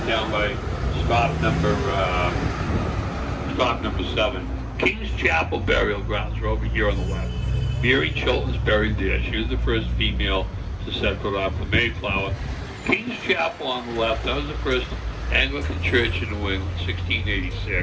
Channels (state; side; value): identical; both; correlation 1.00